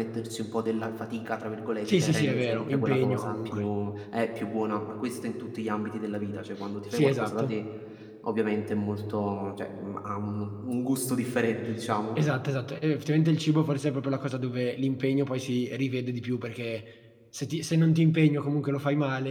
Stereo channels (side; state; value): both; identical; correlation 1.00